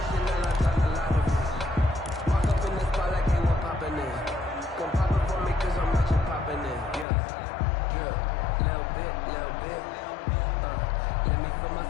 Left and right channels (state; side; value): drops out; right; at 7.1 s